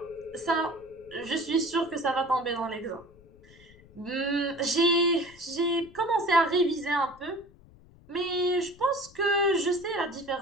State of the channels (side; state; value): left; noise; rumble, 24 dB below the sound